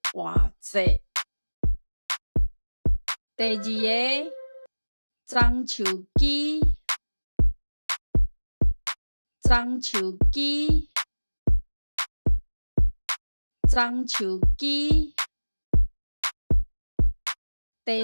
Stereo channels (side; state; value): both; inverted; correlation -1.00